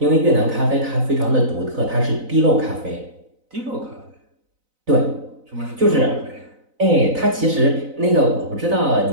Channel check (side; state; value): left; late; 4.0 ms